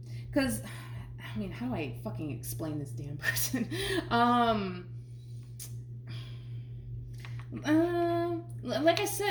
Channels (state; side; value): identical; both; correlation 1.00